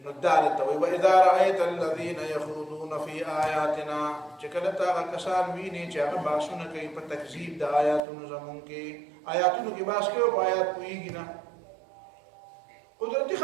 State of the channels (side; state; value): left; drops out; at 8.0 s